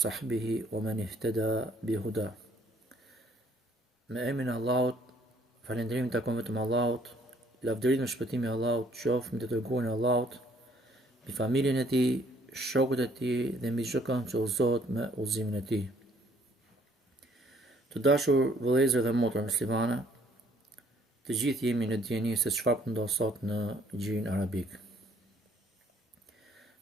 wa man ihtada bihuda. Me emrin e Allahut, falënderim takon vetëm Allahut, lavdërit me shpëtimin e Allahut, qoftë me të dërguarin e Allahut, me familjen e tij, shokët e tij dhe mbi çdo kënd që udhëzohet me udhëzimin e tij. Të dashur vëllezër dhe motra muslimane, të gjithë jemi në dieni se çfarë po ndodh sot në gjirin arabik.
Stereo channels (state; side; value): normal; both; correlation 0.63